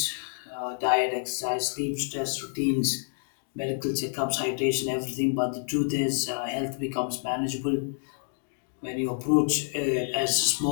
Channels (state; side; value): silent; right; 59 dB below the other